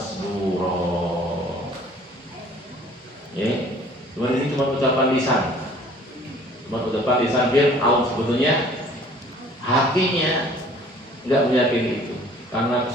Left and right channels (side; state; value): both; normal; correlation 0.53